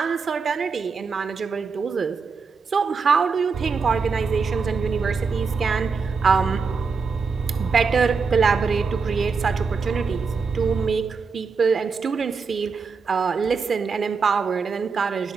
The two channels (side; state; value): left; quieter; 5.1 dB